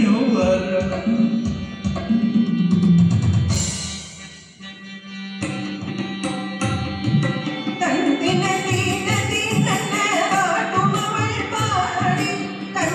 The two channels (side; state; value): both; identical; correlation 1.00